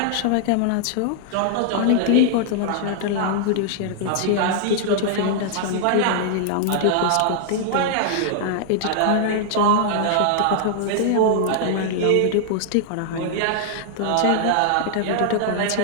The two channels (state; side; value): different; both; correlation -0.01